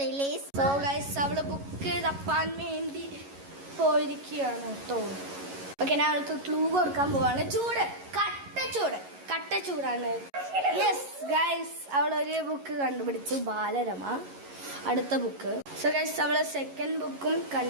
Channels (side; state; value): left; late; 11 ms